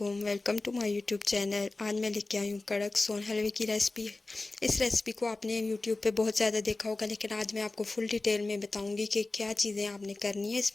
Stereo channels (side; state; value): right; quieter; 3.2 dB